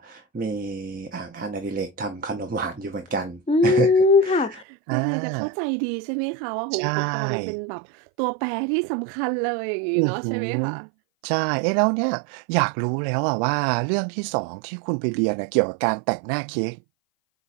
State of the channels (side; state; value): left; drops out; at 4.7 s